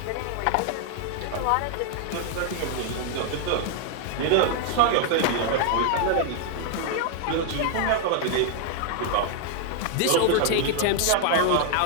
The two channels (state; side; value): different; both; correlation 0.00